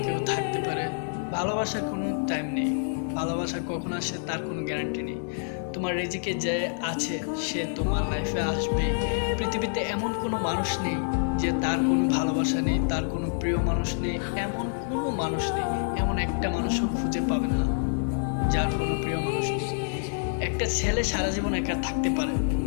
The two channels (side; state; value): right; silent; digital silence